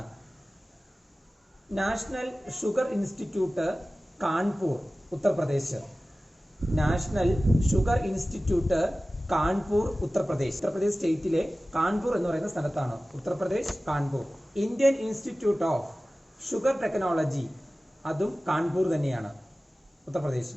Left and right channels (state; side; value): normal; both; correlation 0.96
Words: National sugar institute Kanpur, Uttar Pradesh. National sugar institute Kanpur, Uttar Pradesh. Uttar Pradesh സ്റ്റേറ്റിലെ കാൺപൂർ എന്ന് പറയുന്ന സ്ഥലത്താണ്. Uttar Pradesh, Kanpur. Indian institute of sugar technology, അതും കാൺപൂർ തന്നെയാണ്,